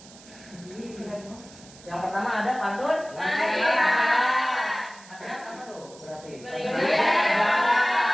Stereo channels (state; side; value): noise; right; hiss, 21 dB below the sound